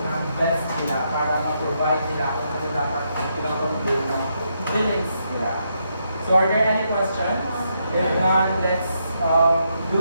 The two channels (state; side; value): inverted; both; correlation -0.79